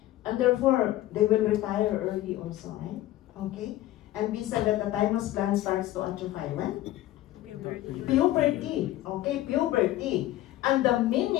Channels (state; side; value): quieter; right; 15.0 dB